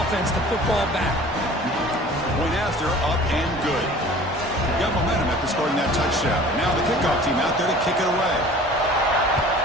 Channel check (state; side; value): normal; both; correlation 0.45